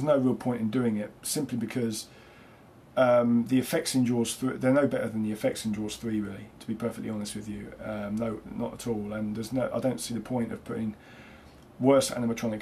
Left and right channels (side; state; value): both; identical; correlation 1.00